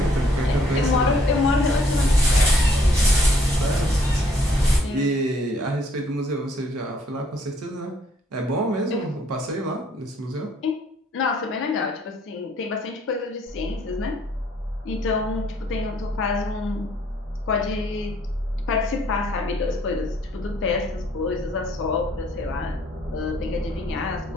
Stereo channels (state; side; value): normal; both; correlation 0.63